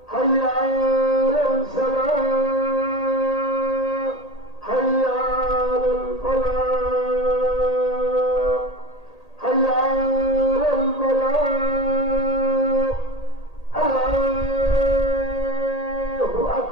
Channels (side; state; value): right; late; 1.8 ms